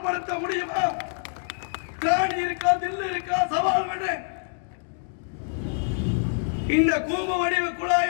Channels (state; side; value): silent; right; digital silence